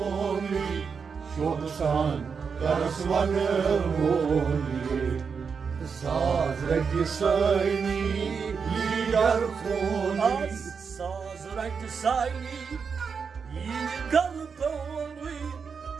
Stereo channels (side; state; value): left; quieter; 5.9 dB